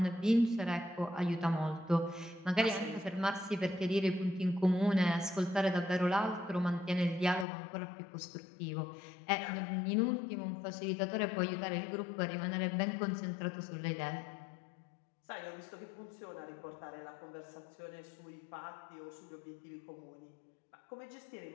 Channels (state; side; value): drops out; right; at 7.5 s